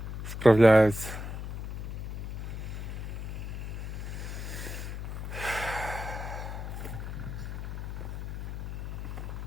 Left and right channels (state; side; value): noise; left; hum, 5 dB below the sound